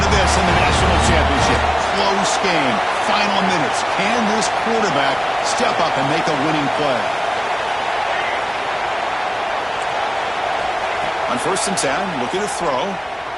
to this in the national championship. Close game. Final minutes. Can this quarterback step up and make a winning play? On 1st and 10, looking to throw.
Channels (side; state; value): both; identical; correlation 1.00